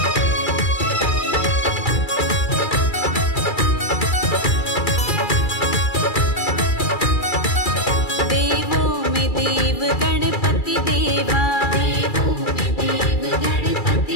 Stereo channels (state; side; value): late; right; 2.3 ms